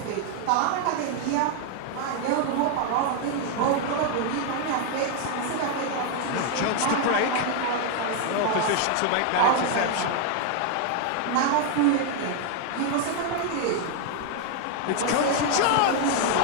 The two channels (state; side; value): different; both; correlation 0.00